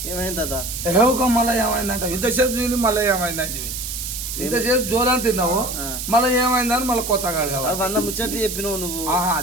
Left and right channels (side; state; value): right; noise; hiss, 6 dB below the sound